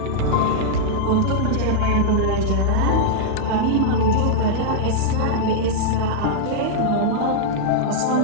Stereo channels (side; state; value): both; different; correlation -0.02